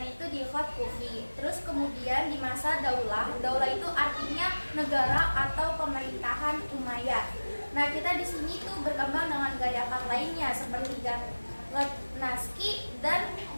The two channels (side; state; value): both; inverted; correlation -1.00